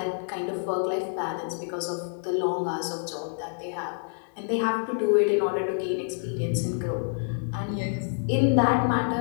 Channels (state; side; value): silent; right; 60 dB below the other